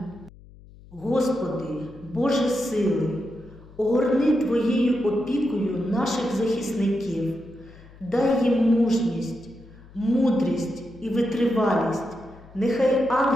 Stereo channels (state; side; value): noise; left; hum, 22 dB below the sound